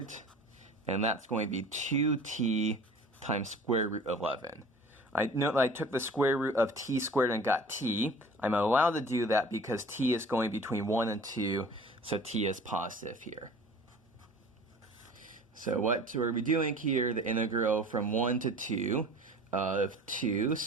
and that's going to be 2t times square root 11. I know that I took the square root of t squared and got t. I'm allowed to do that because t is going between 1 and 2, so t is positive here. So what are we doing here? The integral from 1 to 2 of 2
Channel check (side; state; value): both; normal; correlation 0.44